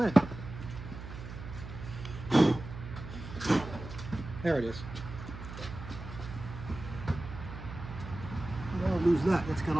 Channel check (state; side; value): noise; right; hum, 11 dB below the sound